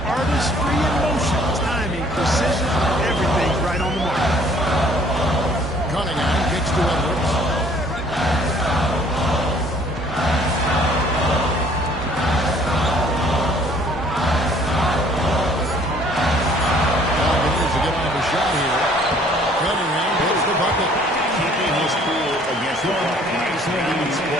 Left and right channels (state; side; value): normal; both; correlation 0.58